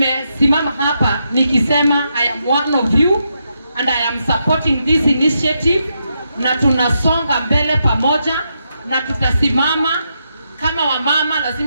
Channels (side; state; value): both; inverted; correlation -0.82